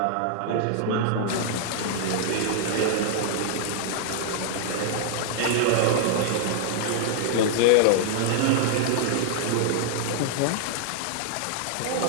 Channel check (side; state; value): both; different; correlation -0.01